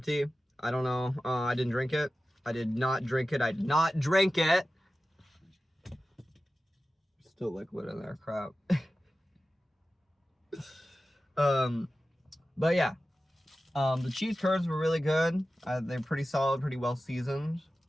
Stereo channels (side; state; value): both; normal; correlation 0.94